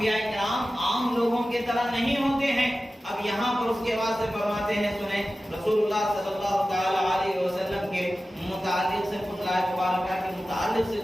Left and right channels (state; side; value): normal; both; correlation 0.95